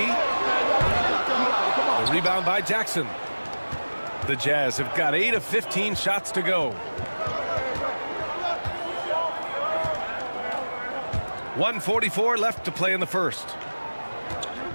The rebound by Jackson. The Jazz have got 8 of 15 shots to go. 1:44 left to play in the first.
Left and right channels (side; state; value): both; inverted; correlation -1.00